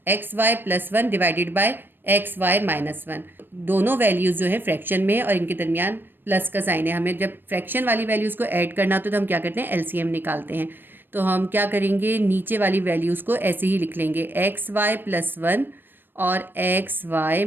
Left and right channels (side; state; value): left; late; 0.096 ms